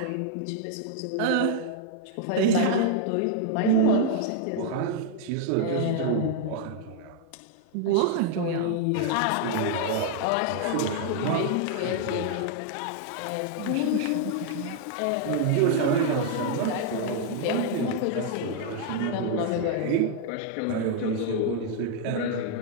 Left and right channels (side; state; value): both; different; correlation 0.00